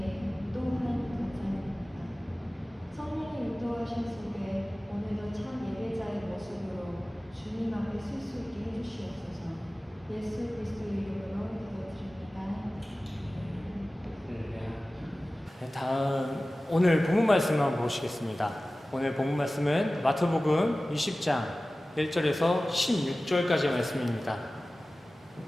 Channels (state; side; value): normal; both; correlation 0.97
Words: 또한 감사드립니다. 성령의 인도하심 속에 오늘도 참 예배자의 모습으로 주님 앞에 설 수 있게 해주시옵소서. 예수 그리스도 이름으로 기도드립니다. 네, 다음 오늘 본문 말씀을 한번 보시겠습니다. 오늘 본문 말씀은 마태복음 20장 1절에서 16절까지의 말씀입니다.